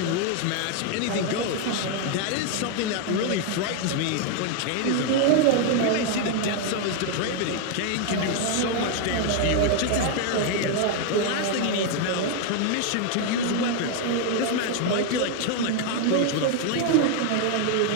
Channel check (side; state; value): both; different; correlation 0.00